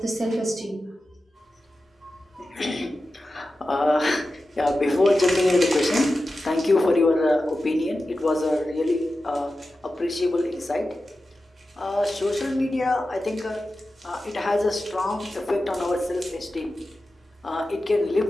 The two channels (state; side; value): normal; both; correlation 0.93